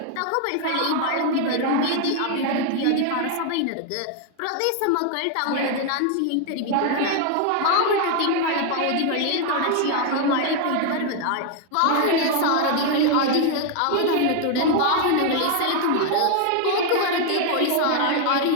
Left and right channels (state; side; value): different; both; correlation 0.01